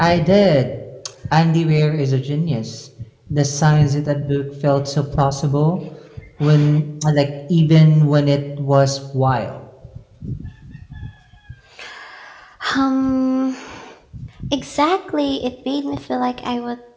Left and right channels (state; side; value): identical; both; correlation 1.00